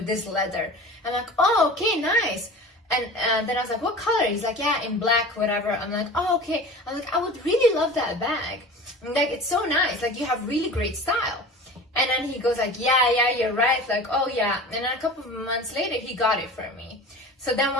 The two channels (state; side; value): normal; both; correlation 0.37